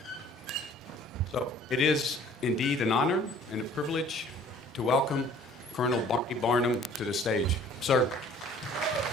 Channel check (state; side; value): normal; both; correlation 0.53